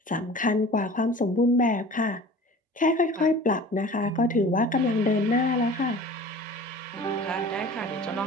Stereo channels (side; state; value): both; normal; correlation 0.42